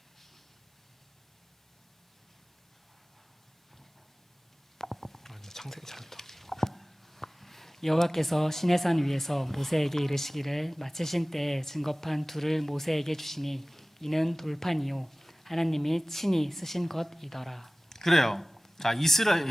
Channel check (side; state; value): both; normal; correlation 0.98